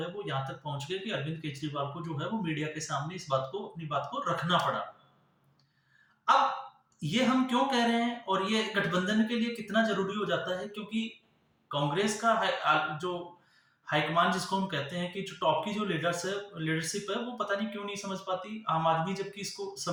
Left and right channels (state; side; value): identical; both; correlation 1.00